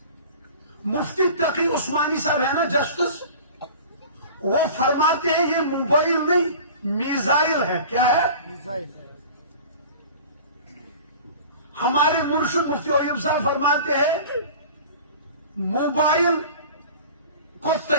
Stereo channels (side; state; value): both; inverted; correlation -0.40